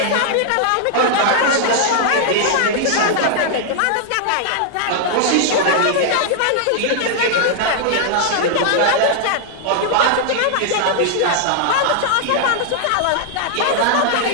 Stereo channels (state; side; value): different; both; correlation -0.01